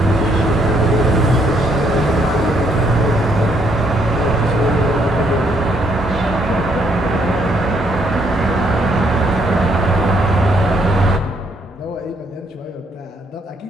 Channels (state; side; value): normal; both; correlation 0.71